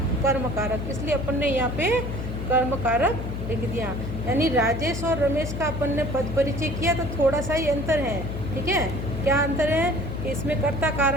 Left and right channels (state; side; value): noise; left; hum, 5 dB below the sound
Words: कर्म कारक। इसलिए अपन ने यहाँ पे कर्म कारक लिख दिया। यानी राजेश और रमेश का अपन ने पद परिचय किया, तो थोड़ा सा ही अंतर है। ठीक है, क्या अंतर है? कि इसमें कर्ता